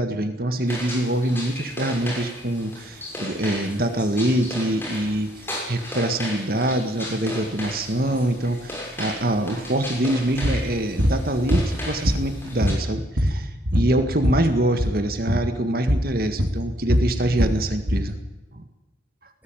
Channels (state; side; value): normal; both; correlation 0.67